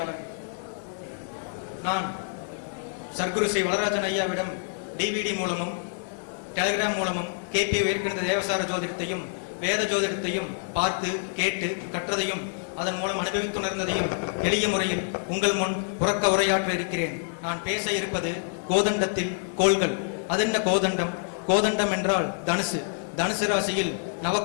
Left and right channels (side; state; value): right; silent; 58 dB below the other